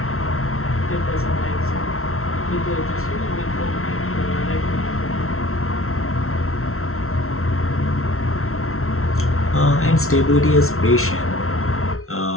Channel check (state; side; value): late; right; 0.62 ms